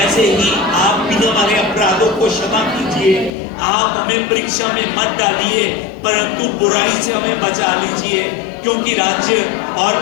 ही आप भी हमारे अपराधों को क्षमा कीजिए। आप हमें परीक्षा में मत डालिए, परंतु बुराई से हमें बचा लीजिए, क्योंकि राज्य और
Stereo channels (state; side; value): drops out; right; at 3.3 s